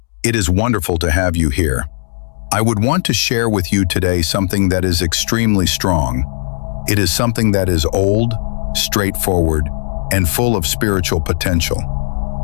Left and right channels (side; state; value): right; silent; digital silence